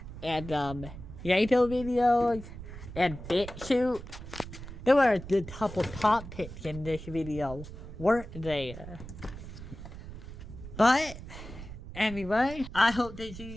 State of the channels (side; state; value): right; noise; rumble, 12 dB below the sound